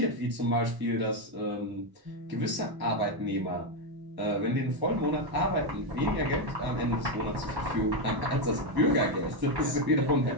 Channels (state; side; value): late; left; 1.0 ms